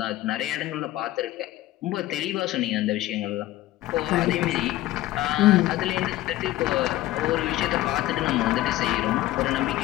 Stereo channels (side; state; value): right; quieter; 15.8 dB